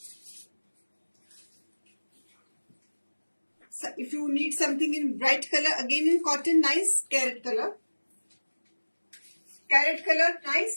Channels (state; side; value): inverted; both; correlation -1.00